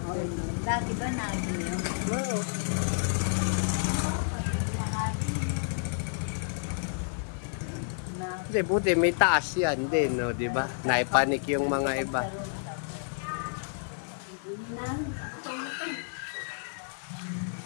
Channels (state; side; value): silent; right; digital silence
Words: Dati ba nakikita yun? Oo. Hindi, buti, may taas yan din, no, di ba? Naipanik yung mga iba.